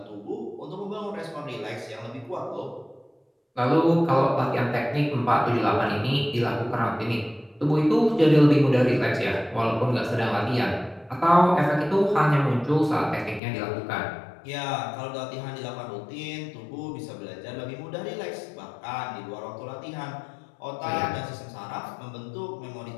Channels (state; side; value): drops out; right; at 13.4 s